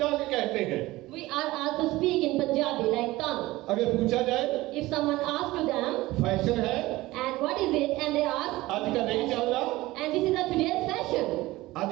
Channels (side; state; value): left; quieter; 18.7 dB